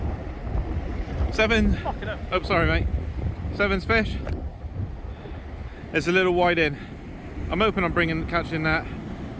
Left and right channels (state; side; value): identical; both; correlation 1.00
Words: Seven. Oh, sorry, mate. Seven's fish. It's a little wide in. I'm hoping I'm catching that.